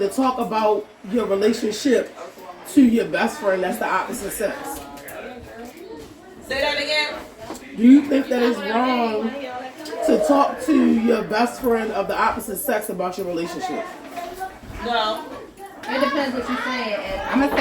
talk about your relationship to your best friend that's the opposite sex? Say that again. Do you think that it's wrong to talk to your best friend of the opposite sex about your relationship? No. It depends what you're saying. I'm gonna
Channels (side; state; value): both; identical; correlation 1.00